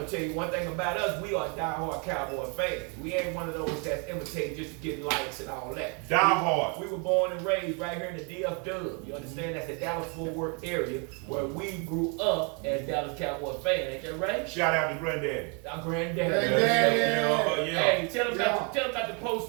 tell you one thing about us, we are diehard Cowboy fans. We ain't one of those that's imitating just to get likes and all that. Diehard. We were born and raised right here in the DFW. You understand? That's the Dallas-Fort Worth area where we grew up as Dallas Cowboy fans. Ain't that right? Shout out to Granddaddy. Our granddaddy. Granddaddy. Yeah. Hey, tell them about the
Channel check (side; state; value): left; quieter; 34.4 dB